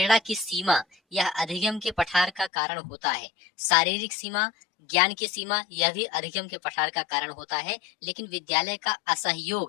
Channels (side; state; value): right; drops out; at 2.5 s